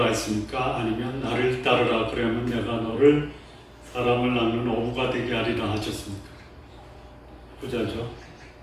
했습니까? 아니면 나를 따르라 그러면 내가 너를 사람을 낳는 어부가 되게 하리라 하셨습니까? 부자죠.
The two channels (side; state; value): both; identical; correlation 1.00